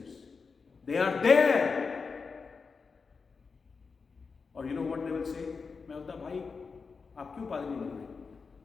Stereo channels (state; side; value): quieter; right; 5.0 dB